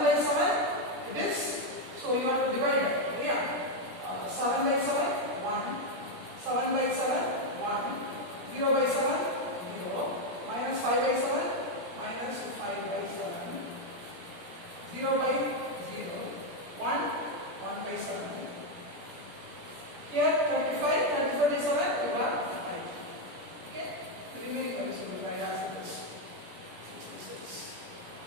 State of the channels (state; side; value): late; left; 17 ms